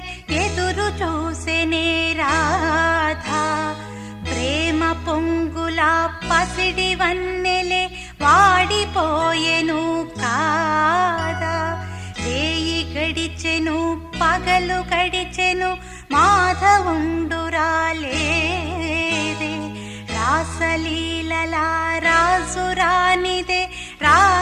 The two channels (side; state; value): both; identical; correlation 1.00